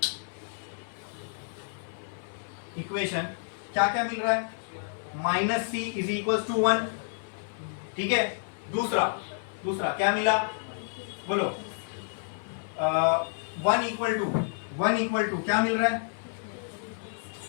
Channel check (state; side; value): silent; right; digital silence